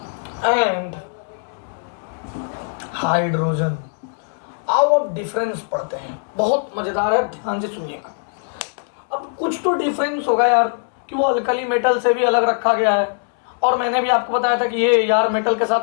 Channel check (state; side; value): silent; right; digital silence